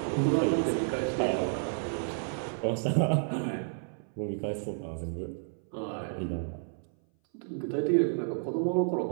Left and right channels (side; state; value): left; silent; 57 dB below the other